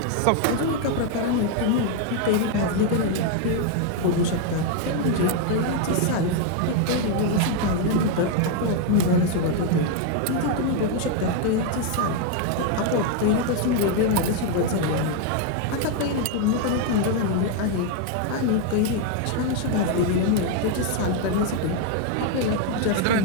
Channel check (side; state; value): both; different; correlation 0.01